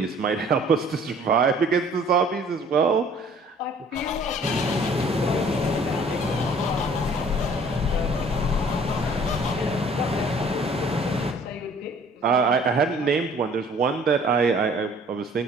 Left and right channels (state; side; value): normal; both; correlation 0.54